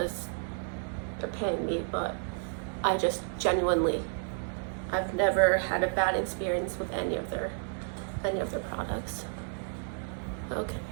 they're paying me, but I just genuinely, I've never had a bad experience with any of their products. Okay,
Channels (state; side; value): silent; left; 57 dB below the other